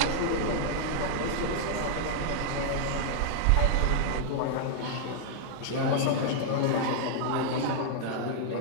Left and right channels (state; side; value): different; both; correlation -0.01